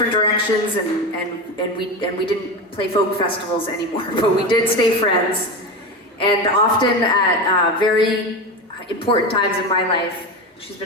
directions, and we didn't play folk festivals anymore, but we did stay friends. And often at very important times in my life, she's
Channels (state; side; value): normal; both; correlation 0.21